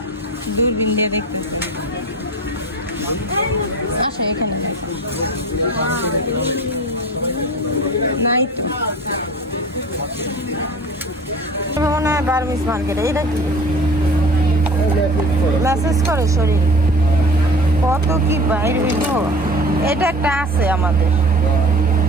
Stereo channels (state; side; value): normal; both; correlation 0.40